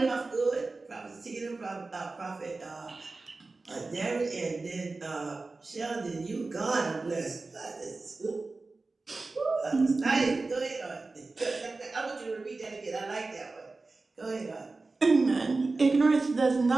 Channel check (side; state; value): left; quieter; 3.6 dB